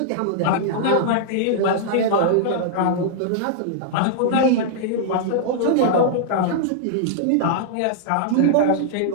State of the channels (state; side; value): different; both; correlation -0.01